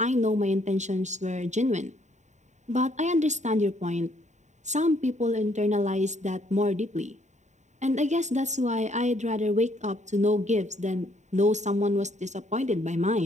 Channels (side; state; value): left; late; 0.34 ms